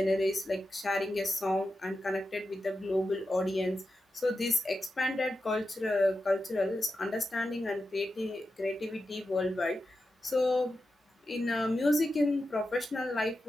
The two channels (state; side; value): normal; both; correlation 0.90